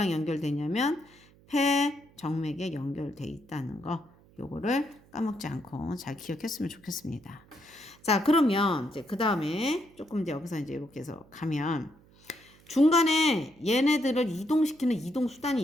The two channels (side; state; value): right; noise; hum, 27 dB below the sound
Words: 연결되냐면 폐 정맥에 연결돼 있다는 거. 요거를 까먹지 않고 잘 기억했으면 좋겠습니다. 자, 그러면 이제 그 다음에 조금 이제 여기서 이제 이렇게 해서 가면 중간에 얘네들을 이동시키는 이동 수단이